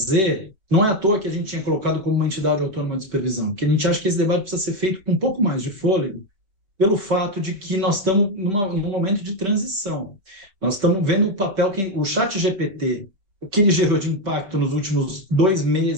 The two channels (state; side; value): late; left; 5.0 ms